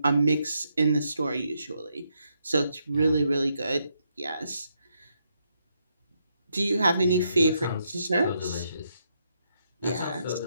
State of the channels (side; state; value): both; inverted; correlation -0.78